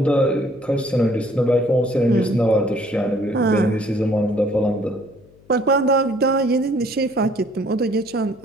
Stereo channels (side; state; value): left; noise; hum, 28 dB below the sound